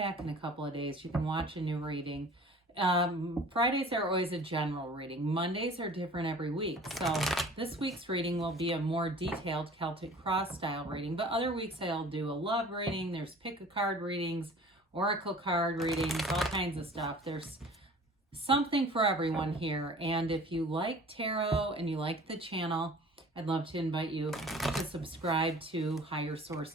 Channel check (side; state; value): both; normal; correlation 0.46